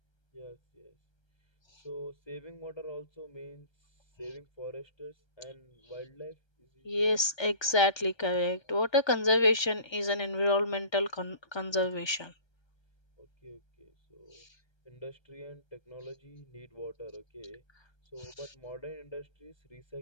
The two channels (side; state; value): right; late; 1.3 ms